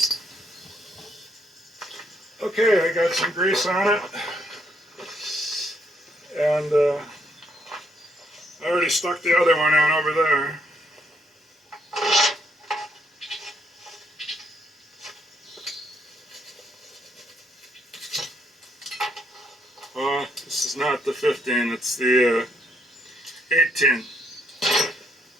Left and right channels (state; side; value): normal; both; correlation 0.73